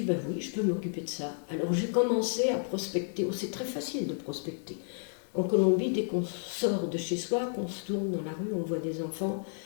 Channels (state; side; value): silent; right; 57 dB below the other